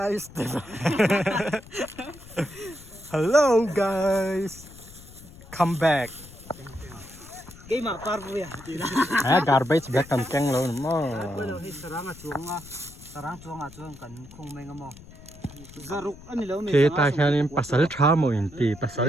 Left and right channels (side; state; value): left; noise; rumble, 19 dB below the sound